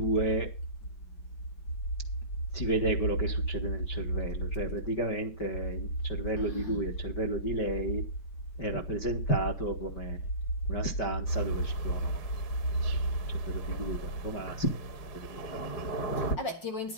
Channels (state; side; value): late; right; 5.2 ms